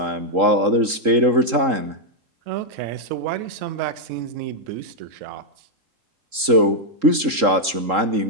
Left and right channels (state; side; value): late; left; 3.7 ms